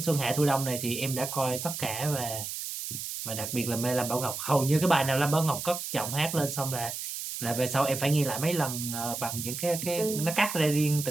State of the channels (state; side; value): noise; right; hiss, 6 dB below the sound